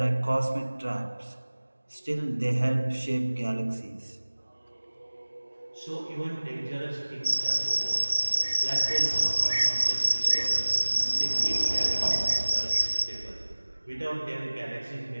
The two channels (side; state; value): both; inverted; correlation -1.00